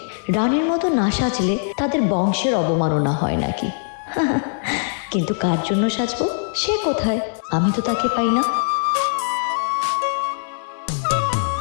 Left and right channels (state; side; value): silent; right; 58 dB below the other